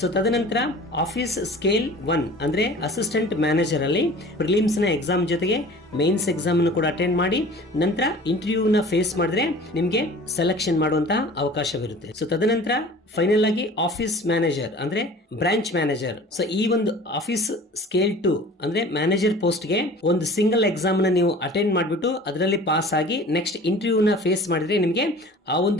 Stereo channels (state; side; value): normal; both; correlation 0.44